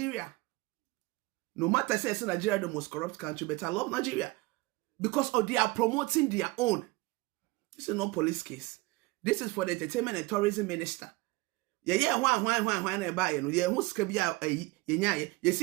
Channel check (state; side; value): quieter; left; 22.3 dB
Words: No matter say Nigeria the most corrupt country, but I love Nigeria because they are promoting their own. This is not police case. This is for the entertainment and tourism minister. Yeah, why na buy no? Yeah, who's kabia ye